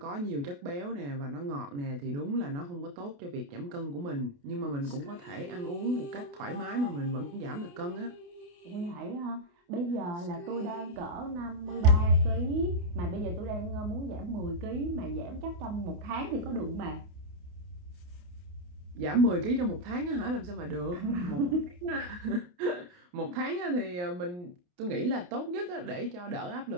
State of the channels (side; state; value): left; late; 28 ms